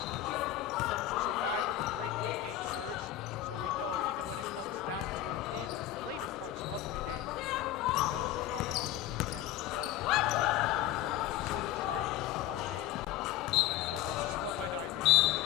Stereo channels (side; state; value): right; quieter; 13.0 dB